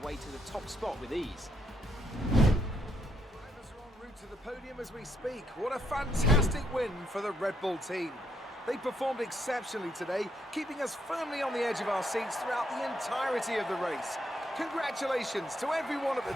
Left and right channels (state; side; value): normal; both; correlation 0.75